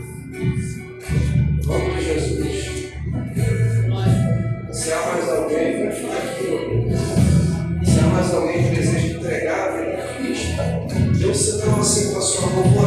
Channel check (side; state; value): both; identical; correlation 1.00